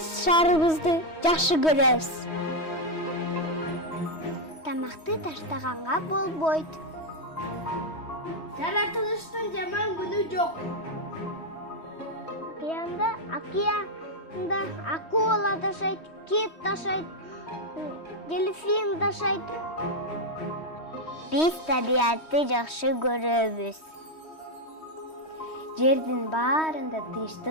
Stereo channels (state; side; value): late; right; 3.1 ms